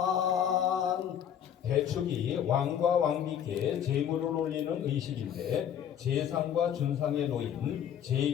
대축이 왕과 왕비께 제물을 올리는 의식인데 제상과 준상에 놓인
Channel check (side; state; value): right; quieter; 9.4 dB